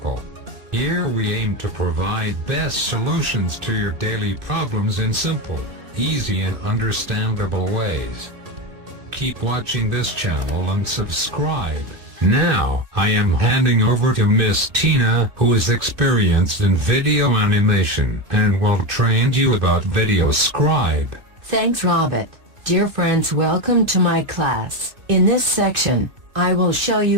Here we aim to provide best solutions to your daily problems in simple, easy and understandable ways. Keep watching this channel and subscribe. Now, I am handing over to Miss Tina, who is experienced in video animation and will train you about Videoscribe. Thanks, Robert. Dear friends, welcome to my class. In this section, I will show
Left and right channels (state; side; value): late; left; 2.7 ms